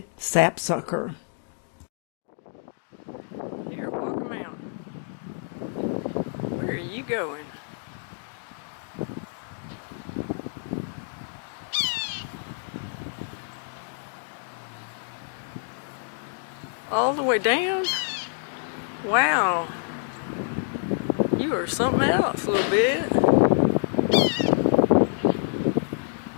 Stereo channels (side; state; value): right; silent; digital silence